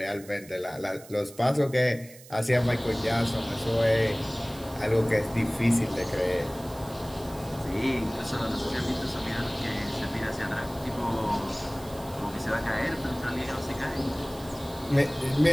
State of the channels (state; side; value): noise; right; hiss, 20 dB below the sound